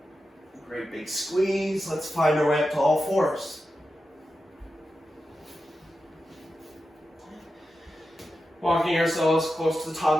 Great big squeeze. Let's find our way up to all fours. Walking ourselves close to the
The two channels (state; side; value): normal; both; correlation 0.90